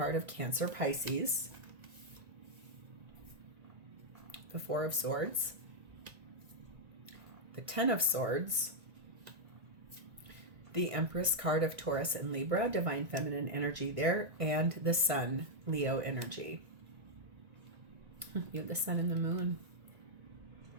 of Cancer, Pisces. The Four of Swords, the Ten of Swords, the Empress card of Taurus and Libra, divine feminine energy there, and the Sun, Leo energy. You have the Sun and the Moon.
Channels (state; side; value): late; left; 1.9 ms